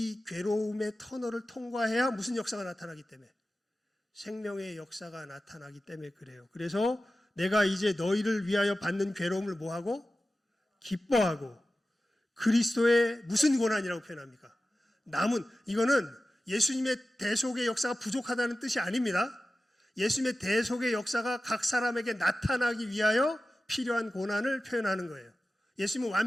괴로움의 터널을 통과해야 무슨 역사가 나타나기 때문에, 생명의 역사가 나타나기 때문에 그래요. 그래서 내가 이제 너희를 위하여 받는 괴로움을 뭐하고? 기뻐하고 그리스도의 무슨 고난이라고 표현합니까? 남은, 이거는 예수님의 대속의 역사가 부족하다는 뜻이 아닙니다. 예수님의 대속의 역사가 각 사람에게 나타나기 위하여 필요한 고난을 표현하는 거예요. 예수님은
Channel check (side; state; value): both; normal; correlation 0.95